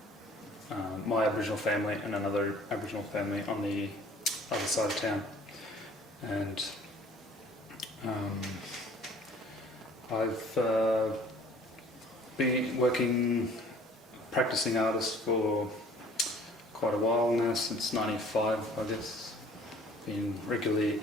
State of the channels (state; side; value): normal; both; correlation 0.52